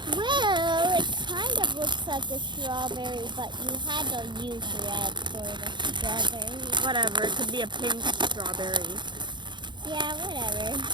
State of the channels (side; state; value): left; late; 0.22 ms